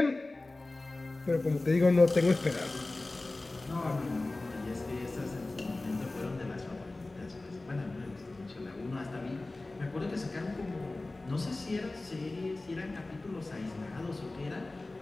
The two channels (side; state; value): right; quieter; 3.0 dB